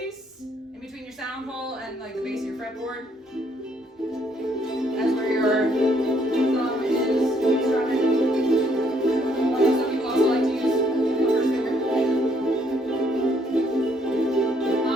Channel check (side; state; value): both; normal; correlation 0.68